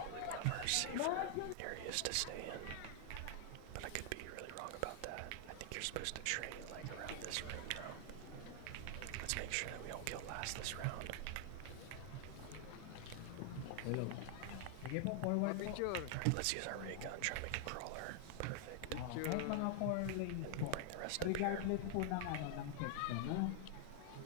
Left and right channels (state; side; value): different; both; correlation 0.00